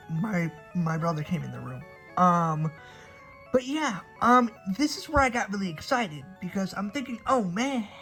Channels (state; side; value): identical; both; correlation 1.00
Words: My brother came in the room. But yeah, this is where I got really excited, because I'm thinking, oh man,